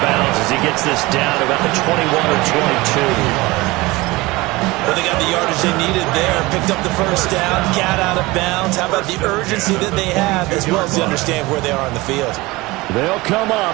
bounds as he gets this down about the 21 or 22. Well, they got the yardage they needed there. Picked up the first down, got out of bounds. How about the urgency that they have, as well as they understand where they are on the field? They'll come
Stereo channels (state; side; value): quieter; left; 21.5 dB